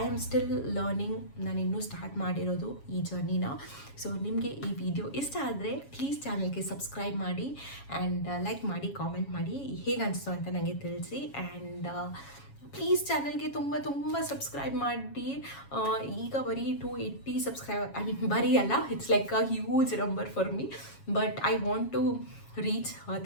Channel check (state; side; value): late; right; 7.3 ms